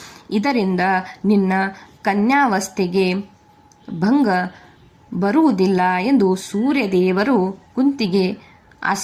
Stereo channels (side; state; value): both; identical; correlation 1.00